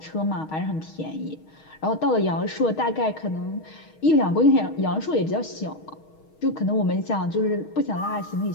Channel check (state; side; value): late; right; 6.4 ms